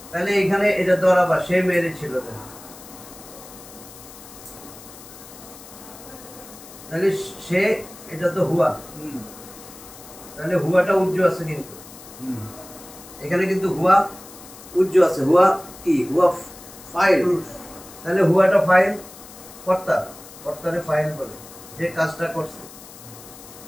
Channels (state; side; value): noise; left; hiss, 18 dB below the sound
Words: তাহলে এখানে এটা দরাবা, সে মেরেছিল। তাহলে সে, এটা তো হুয়া, তাহলে হুয়াটা উজ্জ আছে কিন্তু এখানে, কিন্তু হুয়া উজ্জ আছে। হুয়া কি? হুয়া ফাইল। তাহলে হুয়াটা ফাইল, কর্তা, কর্তারে ফাইল বলে, যে কাজটা করছে।